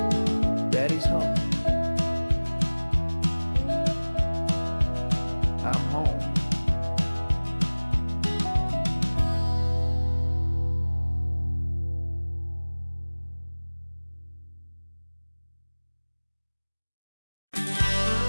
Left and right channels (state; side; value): inverted; both; correlation -1.00